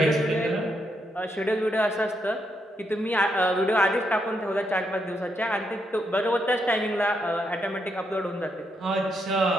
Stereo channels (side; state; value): both; normal; correlation 0.79